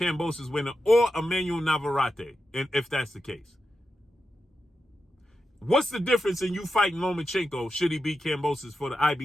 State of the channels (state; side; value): normal; both; correlation 0.89